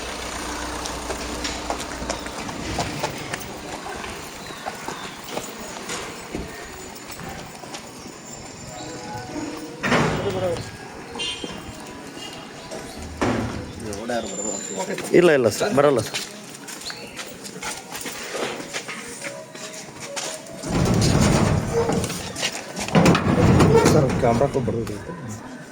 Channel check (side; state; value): both; identical; correlation 1.00